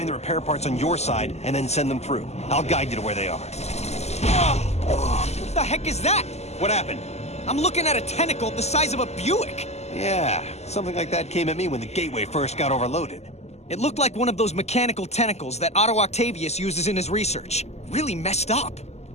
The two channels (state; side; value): late; right; 0.32 ms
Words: the repair parts on your side and then send them through. I'll guide you to where they are. What the heck is that? What happened? I'm looking at a tentacle the size of a Buick. Yeah, something like that came at me when the gateway first got overloaded. It looked like one of those mechanical tentacles that Otto Octavius uses in his research. Really messed up.